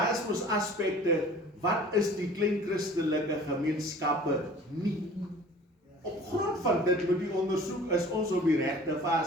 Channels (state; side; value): normal; both; correlation 0.46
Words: is mos aspekte, wat is die klein christelike gemeenskappe nie? Op grond van dit moet die ondersoek, is ons op die regte